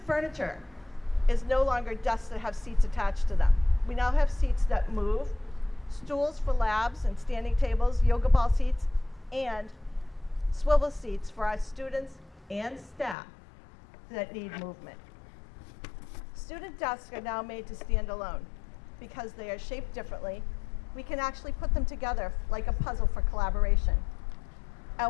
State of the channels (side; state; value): right; drops out; at 13.2 s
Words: furniture is no longer desks that have seats attached to them. We now have seats that move, stools for labs and standing tables, yoga ball seats, and swivel seats for our students and staff that need movement. Student desks are now made to stand alone. Because they are shaped differently, we can actually put them together like a puzzle for collaboration.